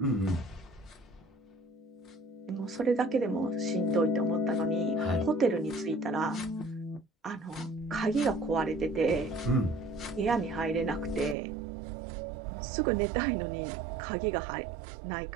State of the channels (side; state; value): left; drops out; at 11.4 s